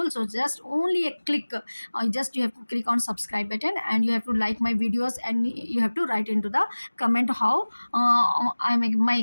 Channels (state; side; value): inverted; both; correlation -1.00